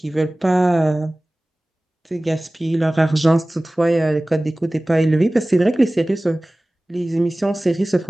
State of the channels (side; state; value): both; normal; correlation 0.98